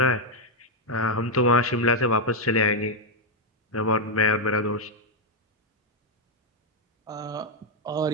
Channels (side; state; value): both; normal; correlation 0.01